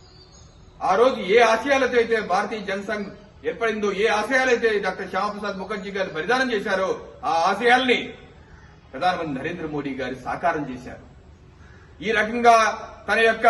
ఆ రోజు ఏ ఆశయాలతో అయితే భారతీయ జనసంఘ్ ఏర్పడిందో, ఏ ఆశయాలైతే డాక్టర్ శ్యామప్రసాద్ ముఖర్జీ గారు బలిదానం చేశారో ఆ ఆశయాల్ని ప్రధానమంత్రి నరేంద్ర మోడీ గారు సాకారం చేశారు. ఈ రకంగా తన యొక్క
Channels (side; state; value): both; identical; correlation 1.00